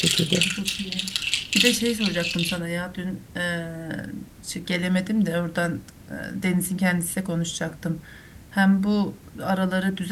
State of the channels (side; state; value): both; identical; correlation 1.00